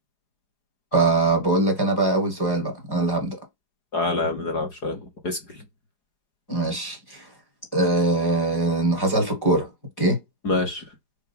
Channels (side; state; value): right; late; 4.9 ms